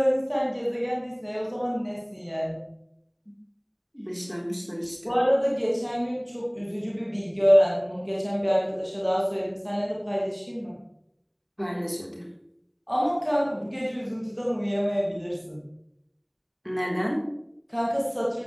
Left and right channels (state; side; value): identical; both; correlation 1.00